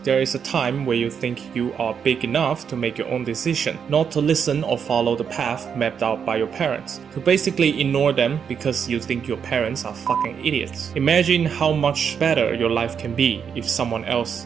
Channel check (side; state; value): left; quieter; 7.2 dB